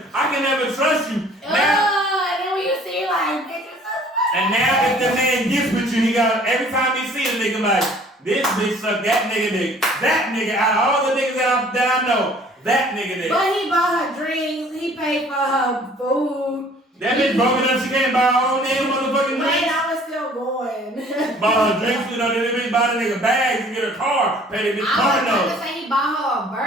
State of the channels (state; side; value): normal; both; correlation 0.54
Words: I can never trust you. And then when you see like, and now if the man gets with you, he got every time he see a nigga like, this bitch suck that nigga dick. That nigga, out of all the niggas that I know, that nigga dick. But he bought her drinks. He paid for her food. That bitch broke enough, she can't buy her own damn motherfucking drinks. Wait, I was still going. Bought her drinks, you know, then the bitch buy the nigga bags and get a car, pay the bitch car note. I was about to say he bought her a